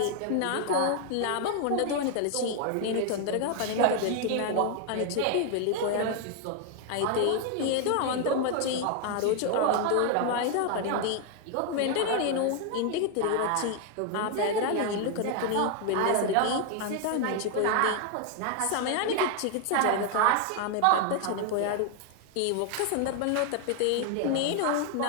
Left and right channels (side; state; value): both; different; correlation 0.00